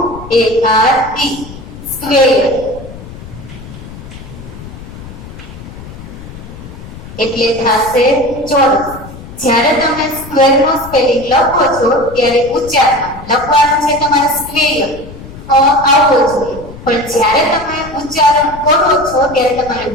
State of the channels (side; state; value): left; noise; rumble, 15 dB below the sound